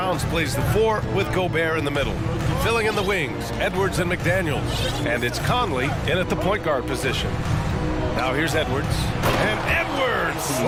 plays the 4 with Gobert in the middle. Filling in the wings, Edwards and McDaniels. And it's Conley in at the point guard position. Now here's Edwards. And Edwards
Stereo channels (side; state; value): both; identical; correlation 1.00